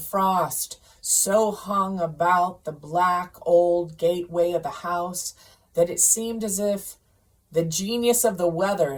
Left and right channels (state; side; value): identical; both; correlation 1.00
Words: frost so hung about the black old gateway of the house that it seemed as if the genius of the